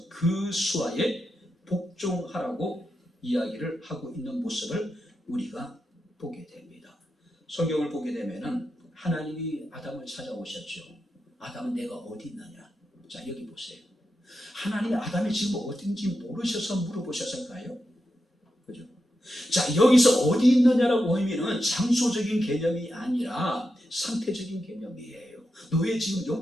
그 수하에 복종하라고 이야기를 하고 있는 모습을 우리가 보게 됩니다. 성경을 보게 되면은 하나님이 아담을 찾아오셨죠. 아담은 내가 어디 있느냐? 자, 여기 보세요. 하나님이 아담이 지금 어딘지 모르셔서 물어보셨을까요? 그죠? 자, 여기서 어디 있느냐라고 의미는 장소적인 개념이 아니라 상태적인 개념이에요. 너의 지금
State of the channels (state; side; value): normal; both; correlation 0.88